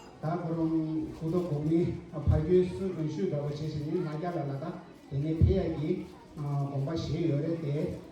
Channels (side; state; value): both; identical; correlation 1.00